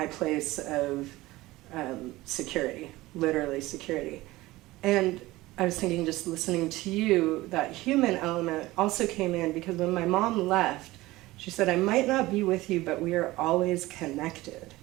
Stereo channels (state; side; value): quieter; left; 18.7 dB